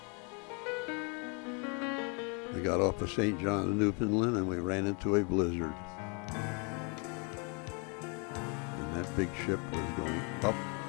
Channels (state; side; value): quieter; right; 35.1 dB